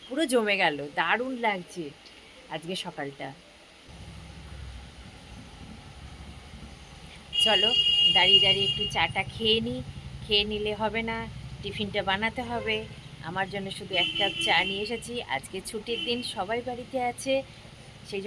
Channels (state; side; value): identical; both; correlation 1.00